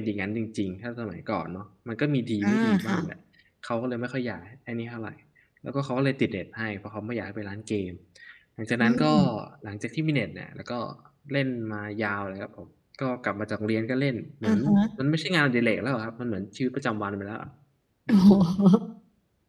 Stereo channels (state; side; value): identical; both; correlation 1.00